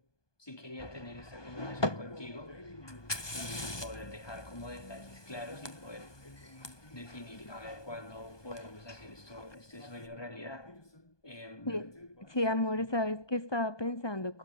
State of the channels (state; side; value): late; right; 1.2 ms